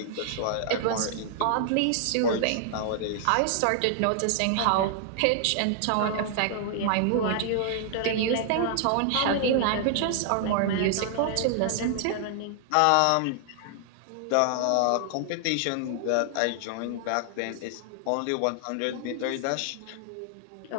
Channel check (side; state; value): both; different; correlation 0.00